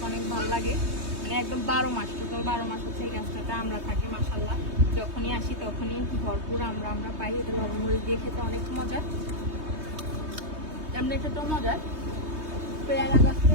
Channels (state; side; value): late; left; 3.2 ms